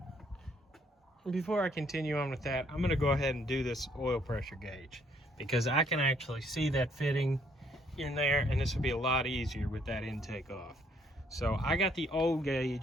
And before I continue on with that, I'm gonna go ahead and do this oil pressure gauge, because I can actually see that fitting in there, and this will be a lot easier with that intake off. So I got the old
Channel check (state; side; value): normal; both; correlation 0.67